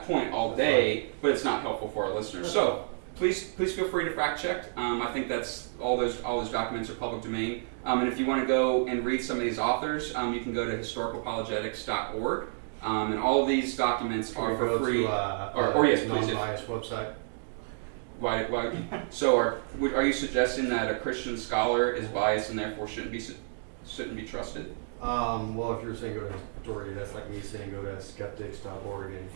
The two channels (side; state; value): left; silent; digital silence